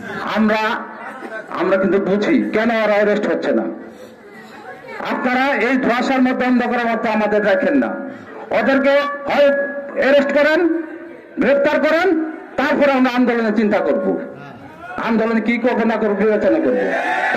আমরা কিন্তু বুঝি কেন ওরা অ্যারেস্ট হচ্ছে না। আপনারা এই ধোঁয়াশার মধ্যে অন্ধকারের মতো আমাদের রাখেন না। ওদেরকে হয় অ্যারেস্ট করেন, গ্রেফতার করেন, তারপরে আমরা আন্দোলনের চিন্তা করব। আন্দোলন কি করবো না করবো বিবেচনা করবো।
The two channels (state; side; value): identical; both; correlation 1.00